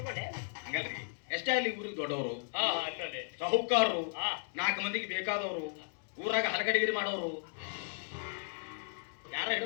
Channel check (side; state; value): right; silent; digital silence